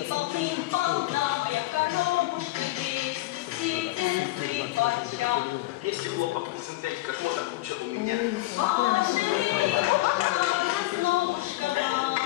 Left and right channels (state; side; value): quieter; right; 18.7 dB